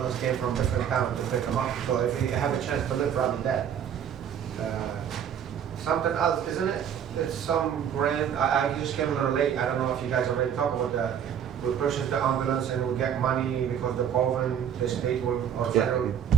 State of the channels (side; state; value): left; quieter; 8.8 dB